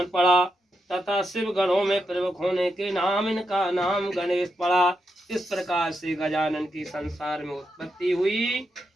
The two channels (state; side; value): normal; both; correlation 0.85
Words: पड़ा तथा शिव गणों में प्रमुख होने के नाम इनका नाम गणेश पड़ा। इस प्रकार से गजानन की संसार में उत्पत्ति हुई